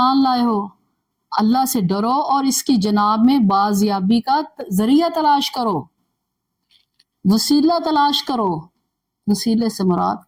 لائے ہو، اللہ سے ڈرو اور اس کی جناب میں بازیابی کا ذریعہ تلاش کرو، وسیلہ تلاش کرو. وسیلے سے مراد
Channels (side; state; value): both; identical; correlation 1.00